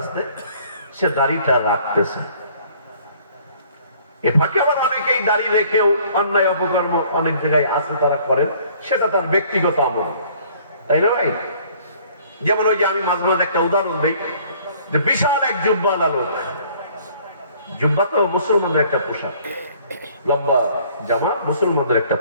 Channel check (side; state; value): both; inverted; correlation -0.57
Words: সে দাড়িটা রাখতেছে। এ ফাঁকে আবার অনেকেই দাঁড়িয়ে রেখেও অন্যায় অপকর্ম অনেক জায়গায় আছে তারা করেন, সেটা তার ব্যক্তিগত আমল, তাই না ভাই? যেমন ওই যে আমি মাঝে মাঝে একটা উদাহরণ দিই, যে বিশাল এক জুব্বাওয়ালা লোক, জুব্বা তো মুসলমানদের একটা পোশাক, লম্বা জামা মুসলমানদের একটা